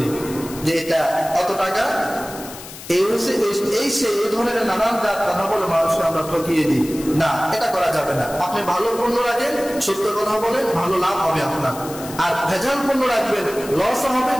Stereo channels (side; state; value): left; noise; hiss, 14 dB below the sound